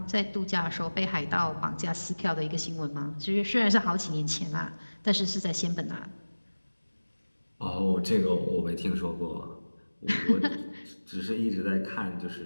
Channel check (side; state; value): both; inverted; correlation -1.00